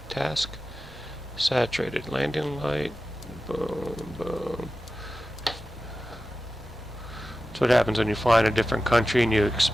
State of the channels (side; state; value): both; normal; correlation 0.94